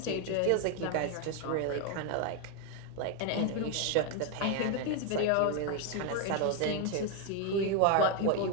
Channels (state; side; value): different; both; correlation 0.01